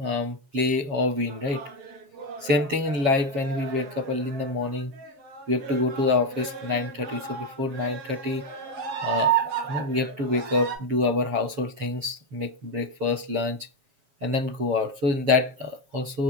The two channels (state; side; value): late; left; 7.3 ms